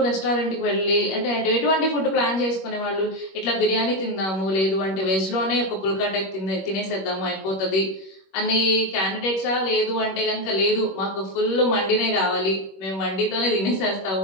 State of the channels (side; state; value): right; late; 21 ms